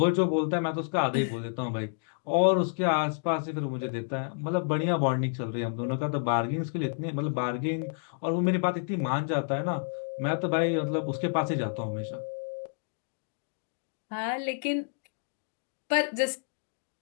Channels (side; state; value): right; silent; digital silence